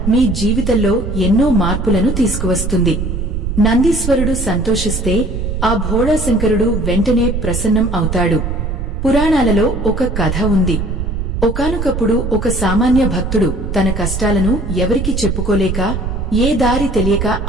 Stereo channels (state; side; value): noise; right; rumble, 3 dB below the sound